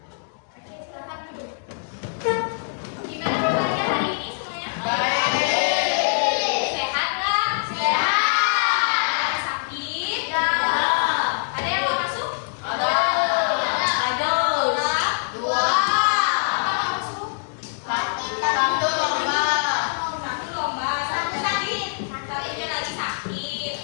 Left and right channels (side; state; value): right; silent; digital silence